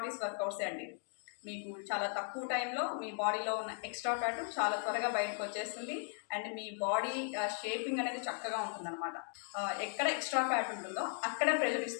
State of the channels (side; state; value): right; silent; 53 dB below the other